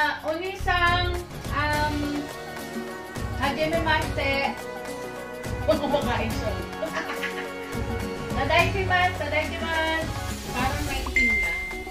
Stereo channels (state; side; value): identical; both; correlation 1.00